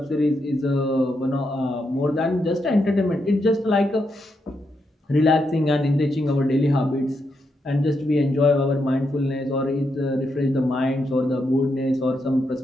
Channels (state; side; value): normal; both; correlation 0.82